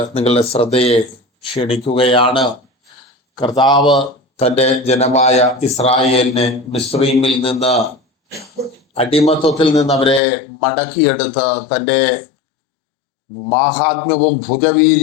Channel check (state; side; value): drops out; right; at 10.2 s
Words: നിങ്ങളുടെ ശ്രദ്ധയെ ക്ഷണിക്കുകയാണ്. കർത്താവ് തൻ്റെ ജനമായ ഇസ്രായേലിനെ മിസ്രയീമിൽ നിന്ന്, അടിമത്വത്തിൽ നിന്ന് അവരെ മടക്കിയെടുത്ത് തൻ്റെ മാഹാത്മ്യവും